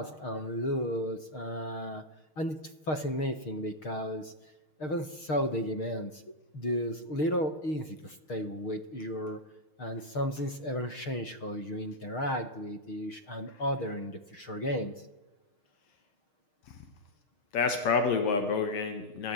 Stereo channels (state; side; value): late; right; 6.5 ms